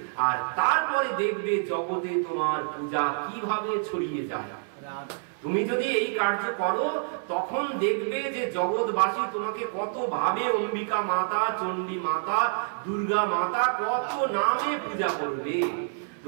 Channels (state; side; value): silent; left; 60 dB below the other